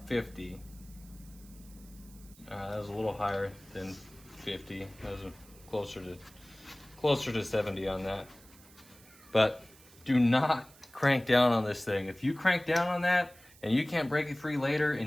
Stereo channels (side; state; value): right; noise; hiss, 24 dB below the sound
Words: 50. That was a little higher than 50. That was closer to 70 on that. But do not crank down on this thing. If you crank down on that, and you can't break it free later